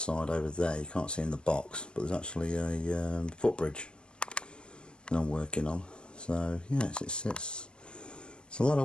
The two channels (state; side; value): late; right; 0.053 ms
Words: over there you can't see in the box, but there's actually a footbridge that I'm working on. So yeah, it's a lot